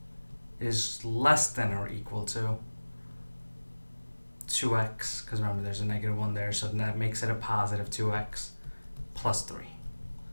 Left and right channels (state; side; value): inverted; both; correlation -1.00